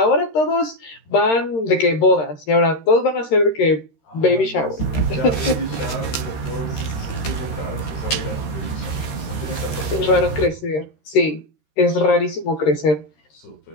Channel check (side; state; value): right; late; 13 ms